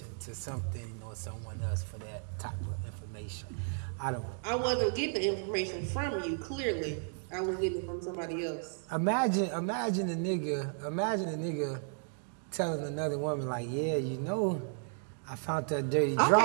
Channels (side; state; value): left; silent; 55 dB below the other